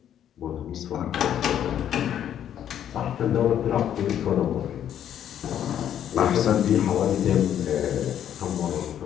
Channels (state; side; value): quieter; right; 10.1 dB